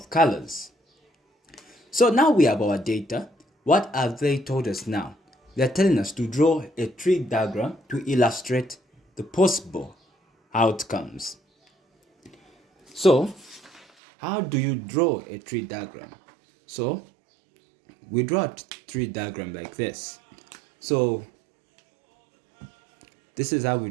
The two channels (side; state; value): left; drops out; at 13.9 s